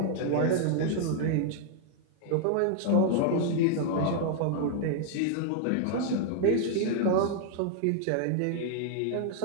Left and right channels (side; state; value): both; different; correlation -0.01